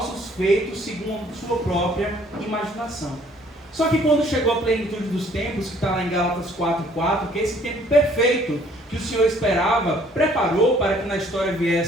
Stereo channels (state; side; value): normal; both; correlation 0.60